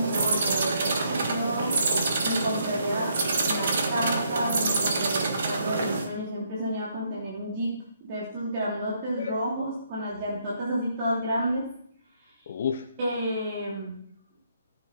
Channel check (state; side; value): inverted; both; correlation -0.72